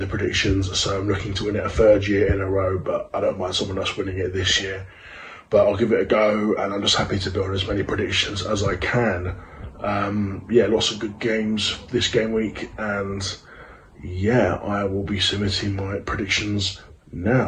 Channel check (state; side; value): identical; both; correlation 1.00